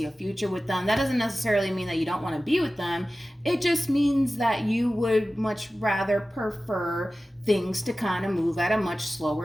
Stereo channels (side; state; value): both; normal; correlation 0.95